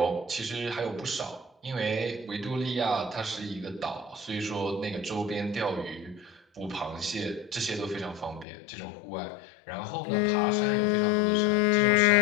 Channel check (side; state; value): right; drops out; at 8.5 s